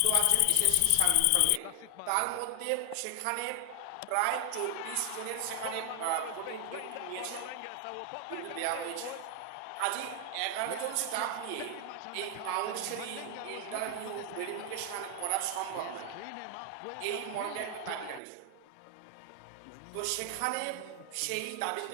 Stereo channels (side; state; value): both; different; correlation 0.00